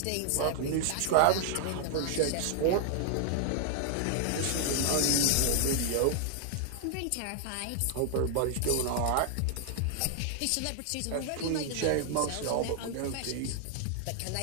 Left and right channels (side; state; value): both; different; correlation 0.00